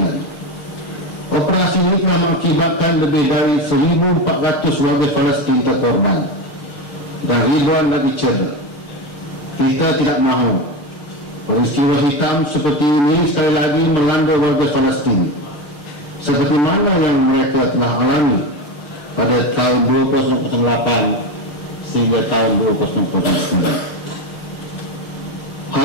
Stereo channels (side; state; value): right; late; 6.3 ms